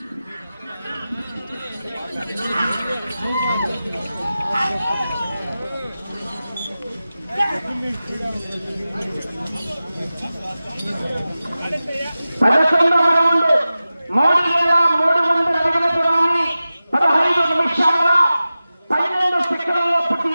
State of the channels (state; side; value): inverted; both; correlation -0.95